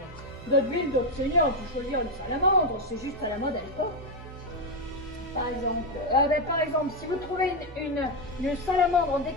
D'autres villes, d'autres seigneurs ont pu choisir une salamandre, c'est juste à la mode à l'époque. Par exemple, si vous trouvez une salamandre en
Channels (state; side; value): normal; both; correlation 0.06